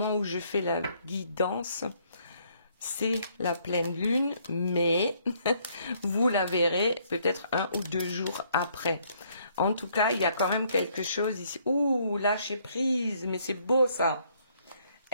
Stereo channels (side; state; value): both; inverted; correlation -0.67